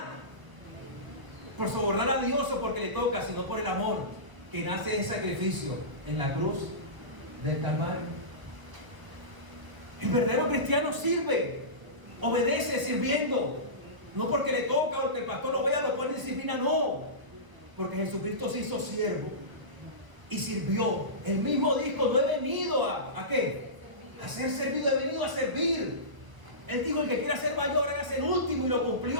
por sobornar a Dios o porque le toca, sino por el amor que nace del sacrificio en la cruz del Calvario. El verdadero cristiano sirve, obedece sirviendo, no porque le toca o porque el pastor lo vea, lo pone en disciplina, no, porque Jesucristo se hizo siervo y sirvió. Él mismo dijo, no he venido ¿a qué? A ser servido, he venido a servir. Él dijo, el que quiera ser mayor, hágase el último, y lo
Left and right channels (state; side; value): late; left; 1.3 ms